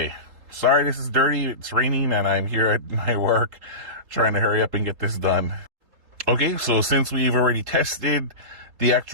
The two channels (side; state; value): left; late; 3.8 ms